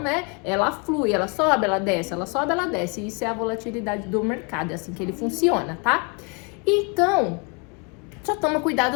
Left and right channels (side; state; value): right; quieter; 33.8 dB